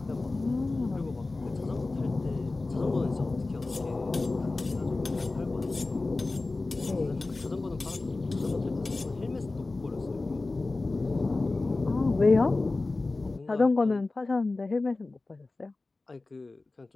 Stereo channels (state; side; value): quieter; right; 3.3 dB